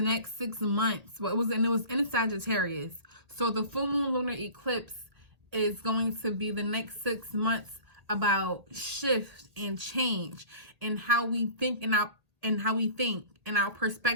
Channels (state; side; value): late; left; 1.8 ms